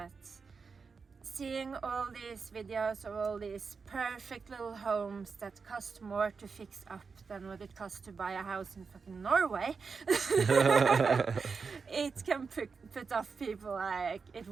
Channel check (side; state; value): left; quieter; 5.1 dB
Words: seeing all these videos of all these perfect little homes that cost more to fix up than what it costs to buy a house in fucking Norway, it can put off people. Like, it